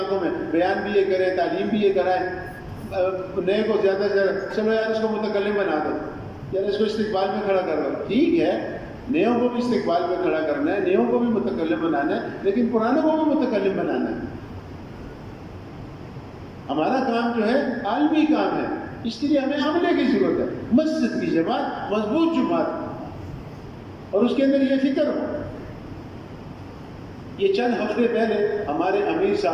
میں بیان بھی یہ کریں، تعلیم بھی یہ کرائیں، نئے کو زیادہ سے زیادہ چلو یار اس کو متکلم بنا دو، یار اس کو استقبال میں کھڑا کر دو۔ ٹھیک ہے نیوں کو بھی استقبال میں کھڑا کرنا ہے، نیوں کو بھی متکلم بنانا ہے، لیکن پرانوں کو بھی متکلم بنانا ہے۔ ہمارا کام جو ہے عالمی کام ہے، اس کے لیے ہمیں عملے کی ضرورت ہے، مسجد کی جماعت مضبوط جماعت اور اس کے اندر یہ فکر ہو۔ یہ چند ہفتے پہلے ہمارے امیر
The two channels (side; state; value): both; identical; correlation 1.00